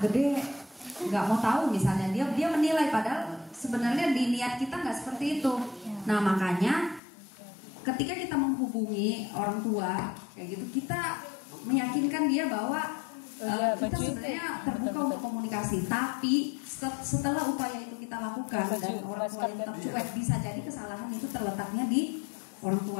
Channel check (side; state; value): right; drops out; at 7.0 s